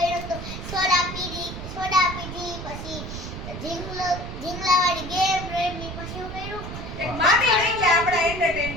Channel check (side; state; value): right; noise; rumble, 8 dB below the sound